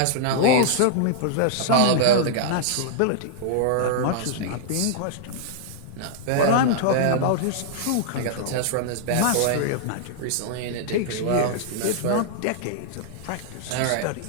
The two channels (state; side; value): different; both; correlation -0.01